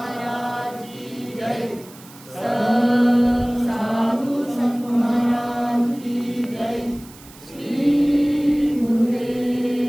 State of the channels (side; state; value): right; noise; hiss, 21 dB below the sound